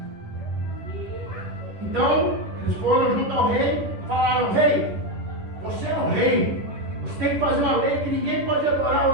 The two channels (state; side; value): late; left; 10 ms